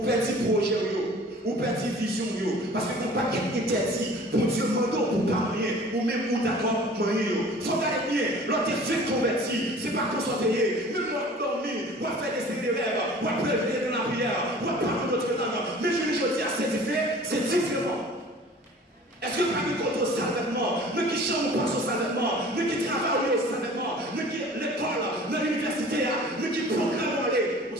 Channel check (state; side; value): normal; both; correlation 0.46